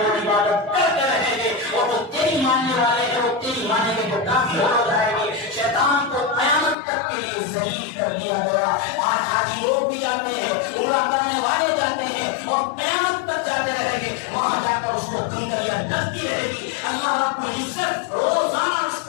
عبادت کرتے رہیں گے، اور وہ تیری ماننے والے ہیں وہ تیری ماننے کے جو کافی ہو جائیں گے۔ شیطان کو قیامت تک کے لیے ذلیل کر دیا گیا۔ آج حاجی لوگ بھی جاتے ہیں، عمرہ کرنے والے جاتے ہیں اور قیامت تک جاتے رہیں گے، وہاں جا کر اس کو کنکریاں ڈلتی رہے گی۔ اللہ رب العزت روزانہ اس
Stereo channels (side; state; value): right; drops out; at 6.8 s